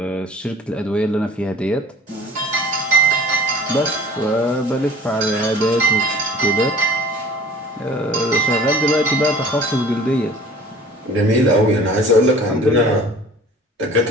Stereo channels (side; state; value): both; normal; correlation 0.46